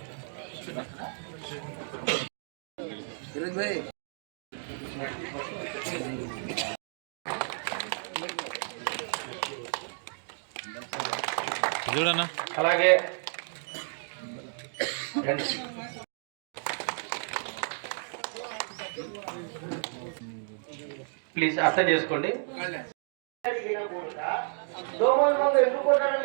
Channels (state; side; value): silent; left; digital silence